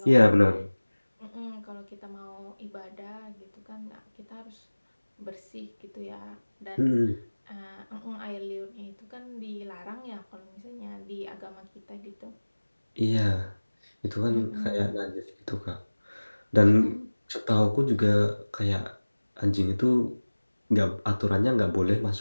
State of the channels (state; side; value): inverted; both; correlation -1.00